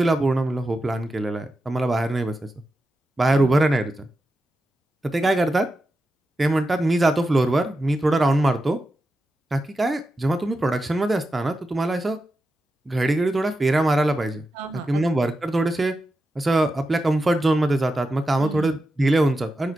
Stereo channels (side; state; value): both; normal; correlation 0.90